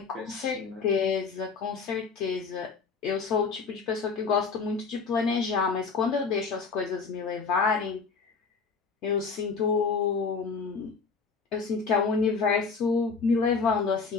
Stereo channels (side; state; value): right; quieter; 5.0 dB